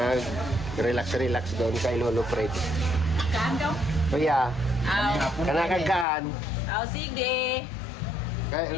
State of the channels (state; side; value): drops out; right; at 6.1 s